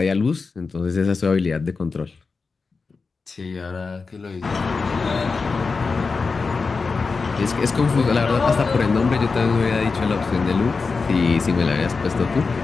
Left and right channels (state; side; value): quieter; right; 4.5 dB